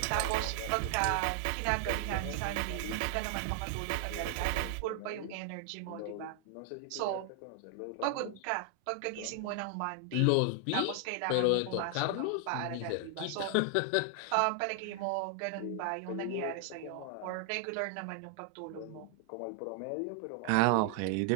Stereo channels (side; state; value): both; different; correlation 0.00